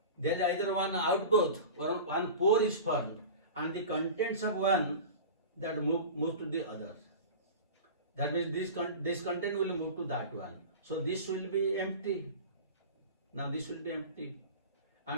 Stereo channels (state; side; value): inverted; both; correlation -0.33